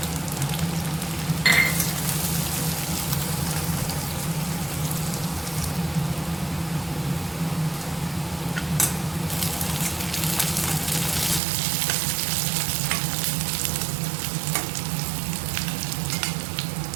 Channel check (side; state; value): left; drops out; at 11.4 s